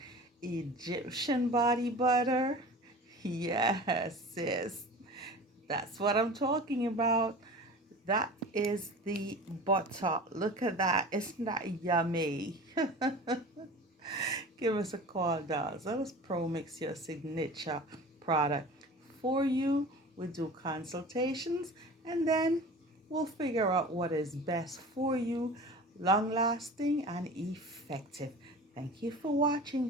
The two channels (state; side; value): normal; both; correlation 0.37